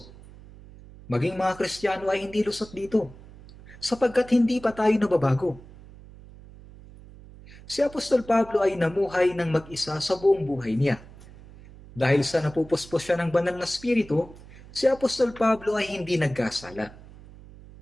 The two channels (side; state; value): right; noise; hum, 19 dB below the sound